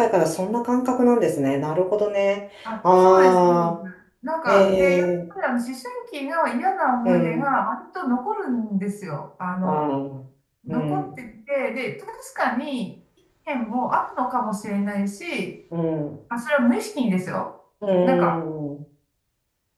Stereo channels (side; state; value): both; identical; correlation 1.00